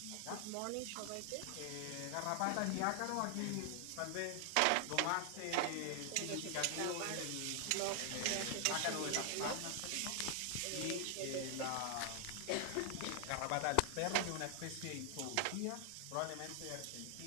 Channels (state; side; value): different; both; correlation 0.00